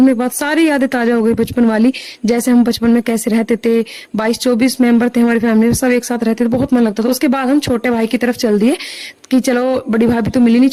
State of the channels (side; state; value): both; identical; correlation 1.00